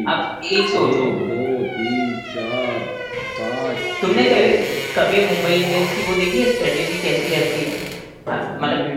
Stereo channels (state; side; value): identical; both; correlation 1.00